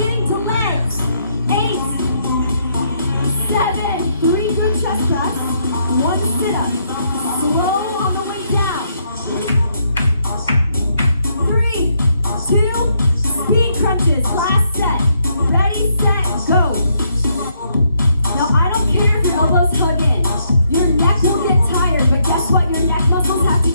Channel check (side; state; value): both; inverted; correlation -0.74